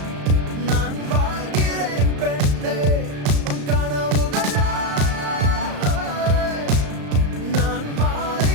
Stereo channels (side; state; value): left; late; 35 ms